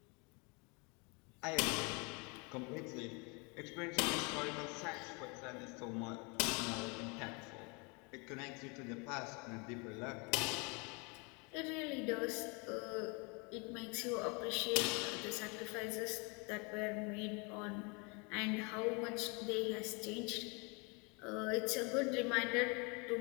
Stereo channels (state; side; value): quieter; right; 31.2 dB